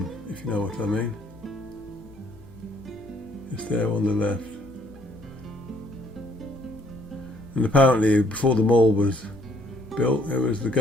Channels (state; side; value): noise; left; hum, 23 dB below the sound